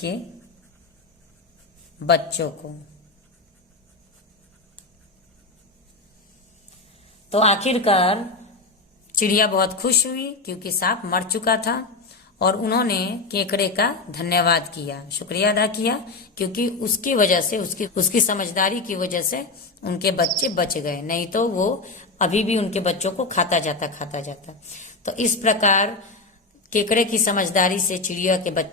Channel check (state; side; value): quieter; right; 3.6 dB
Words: बच्चों को। तो आखिरकार चिड़िया बहुत खुश हुई क्योंकि सांप मर चुका था और उन्होंने केकड़े का धन्यवाद किया, शुक्रिया अदा किया, क्योंकि उसकी वजह से, उसकी समझदारी की वजह से उनके बच्चे बच गए, नहीं तो वो अभी भी उनके बच्चों को खाता जाता। तो इस प्रकार केकड़े की समझदारी से चिड़िया के